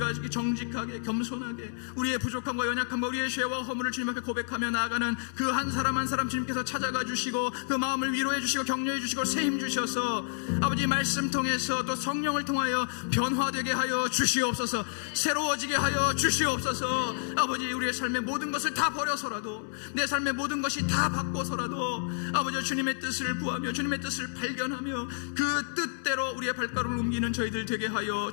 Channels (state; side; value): silent; right; 58 dB below the other